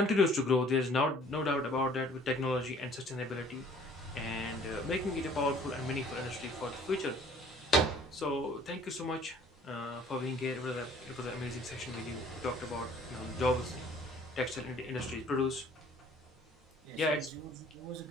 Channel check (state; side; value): normal; both; correlation 0.54